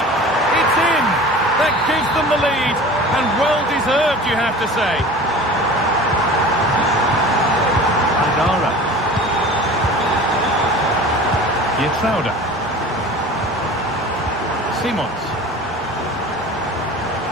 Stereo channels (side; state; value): both; normal; correlation 0.39